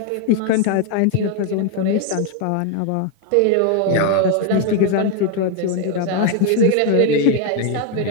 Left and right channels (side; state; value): both; different; correlation 0.01